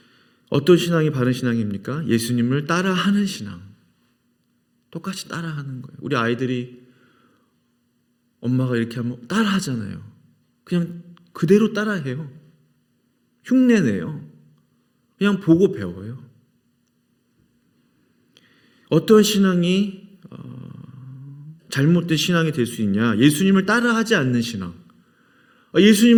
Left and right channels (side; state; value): both; identical; correlation 1.00